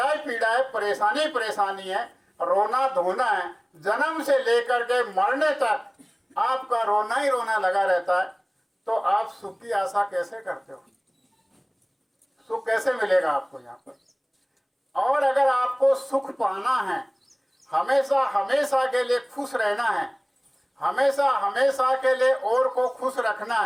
ही पीड़ा है, परेशानी परेशानी है, रोना धोना है, जन्म से लेकर के मरने तक आपका रोना ही रोना लगा रहता है, तो आप सुख की आशा कैसे करते हो? सुख कैसे मिलेगा आपको यहाँ पर? और अगर आपको सुख पाना है, हमेशा हमेशा के लिए खुश रहना है, हमेशा हमेशा के लिए और को खुश रखना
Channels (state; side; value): identical; both; correlation 1.00